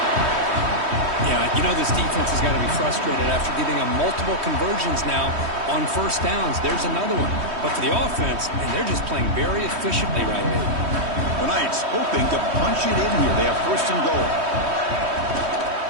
Yeah, Yeah, you know this defense has got to be frustrated after giving them multiple conversions now on first downs. There's another one. But for the offense, and they're just playing very efficiently right now. The Knights hoping to punch it in here. They have first and goal.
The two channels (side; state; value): left; late; 3.1 ms